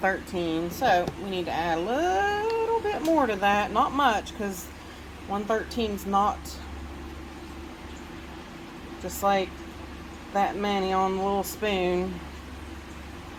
So we need to add a little bit more to that. Not much, because 113 is not just like that many on the little spoon.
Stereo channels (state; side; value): identical; both; correlation 1.00